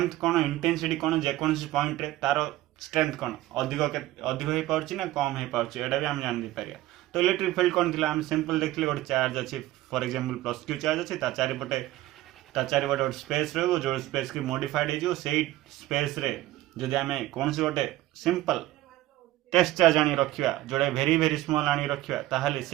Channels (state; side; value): quieter; left; 16.1 dB